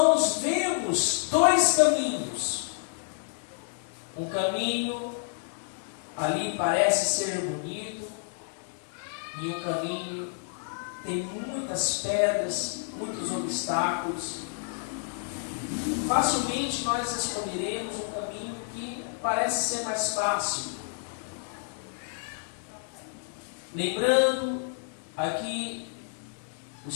vemos dois caminhos, um caminho ali parece ser bonito e um caminho tem muitas pedras, muitos obstáculos, facilmente nós escolheremos um caminho que parece ser mais fácil. Lembrando, aqui o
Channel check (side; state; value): right; silent; 58 dB below the other